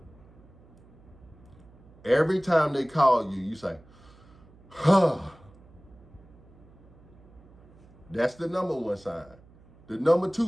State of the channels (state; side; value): noise; right; hum, 25 dB below the sound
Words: Every time they call you, you say, huh. That's the number 1 sign. The number